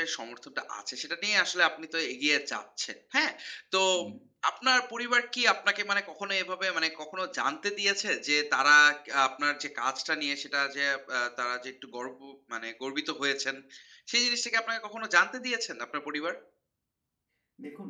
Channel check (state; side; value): identical; both; correlation 1.00